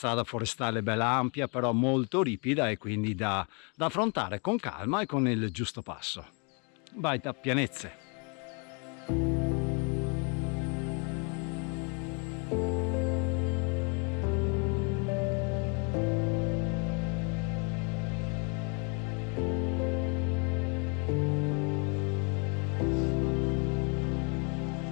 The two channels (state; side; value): quieter; right; 35.2 dB